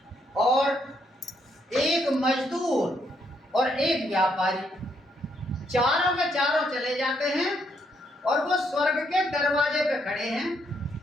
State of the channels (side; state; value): both; normal; correlation 0.74